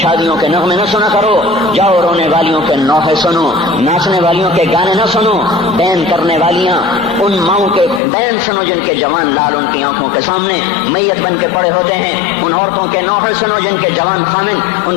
کے نغمے نہ سنا کرو، جاؤ رونے والیوں کے نوحے سنو، ناچنے والیوں کے گانے نہ سنو، بین کرنے والیاں ان ماؤں کے بین سنو جن کے جوان لال ان کی آنکھوں کے سامنے میت بن کے پڑے ہوتے ہیں، ان عورتوں کے نوحے سنو جن کے جوان خامن ان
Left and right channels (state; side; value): drops out; right; at 8.0 s